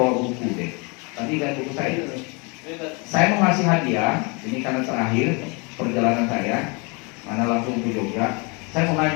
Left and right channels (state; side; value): quieter; right; 30.8 dB